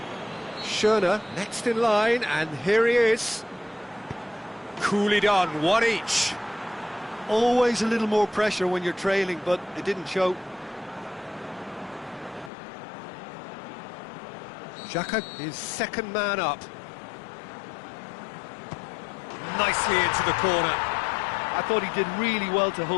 Schöne next in line, and here he is. Coolly done, one each. Always a little more pressure when you're trailing, but it didn't show. Xhaka is second man up. Nicely into the corner. I thought he did really well to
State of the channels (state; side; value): drops out; right; at 12.5 s